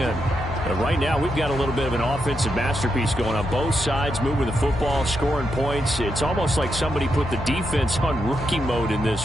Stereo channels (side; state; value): left; noise; hum, 10 dB below the sound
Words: And right now, we've got a little bit of an offensive masterpiece going on both sides, moving the football, scoring points. It's almost like somebody put the defense on rookie mode in